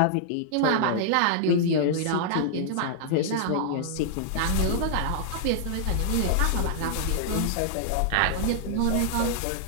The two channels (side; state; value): both; different; correlation -0.01